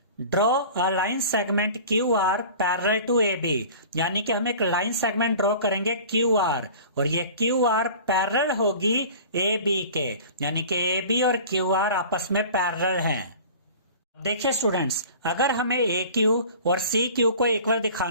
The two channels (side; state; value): both; inverted; correlation -0.42